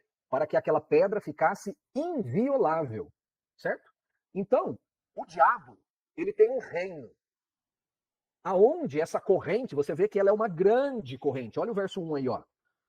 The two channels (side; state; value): both; identical; correlation 1.00